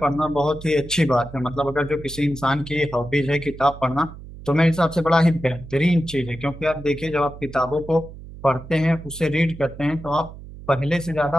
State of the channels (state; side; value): noise; right; hum, 15 dB below the sound